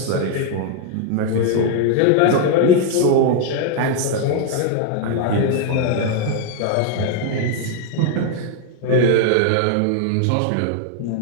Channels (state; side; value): different; both; correlation 0.00